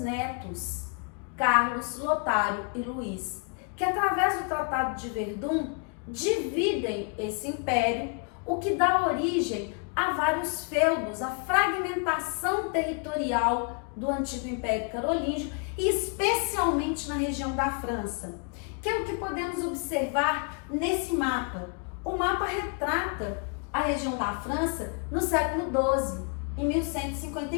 Carlos, Lotário e Luís, que através do Tratado de Verdun dividem esse império, o que dá origem a vários feudos, a fragmentação territorial do antigo Império Carolíngio e especialmente na região da França, que é o que podemos observar nesse mapa. O mapa retrata a região da França no século XII, em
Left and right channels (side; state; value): right; quieter; 38.2 dB